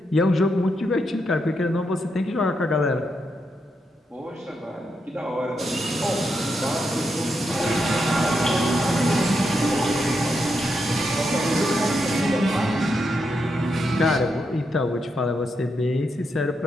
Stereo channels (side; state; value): both; normal; correlation 0.82